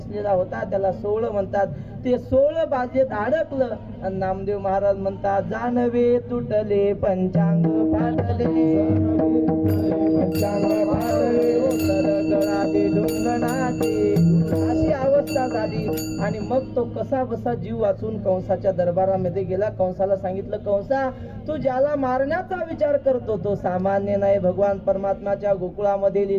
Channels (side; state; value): both; identical; correlation 1.00